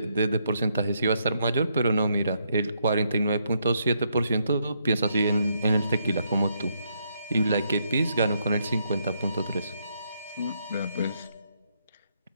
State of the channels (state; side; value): inverted; both; correlation -0.75